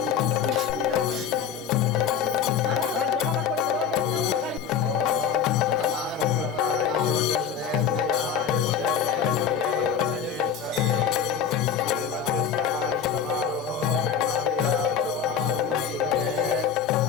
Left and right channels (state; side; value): quieter; right; 7.4 dB